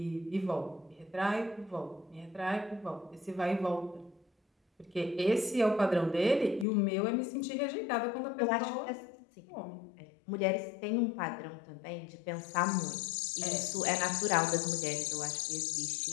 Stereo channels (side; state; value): right; drops out; at 6.7 s